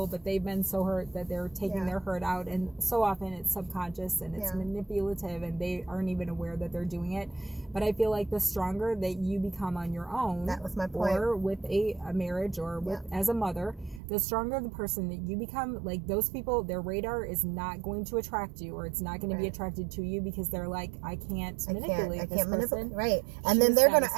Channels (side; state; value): left; drops out; at 14.0 s